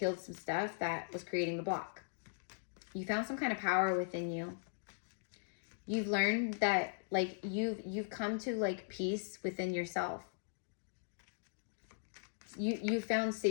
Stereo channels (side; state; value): right; silent; digital silence